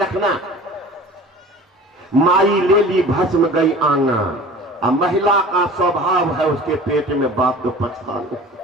माई ले ली भस्म, गई आंगन। अब महिला का स्वभाव है उसके पेट में बात तो पछताने,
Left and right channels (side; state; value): both; normal; correlation 0.42